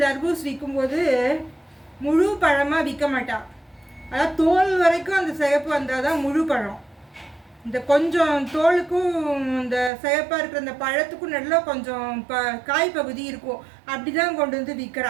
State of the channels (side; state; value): left; drops out; at 9.9 s